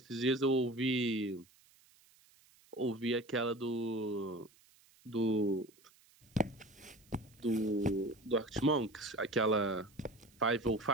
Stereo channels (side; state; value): right; noise; hiss, 29 dB below the sound